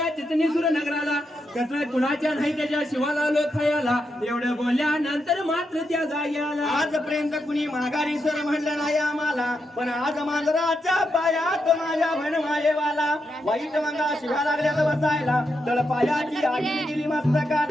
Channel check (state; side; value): normal; both; correlation 0.84